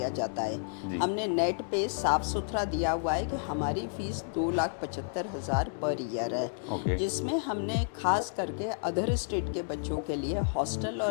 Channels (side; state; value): right; silent; digital silence